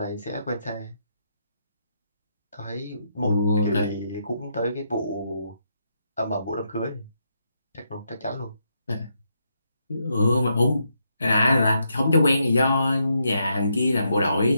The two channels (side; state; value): both; inverted; correlation -0.79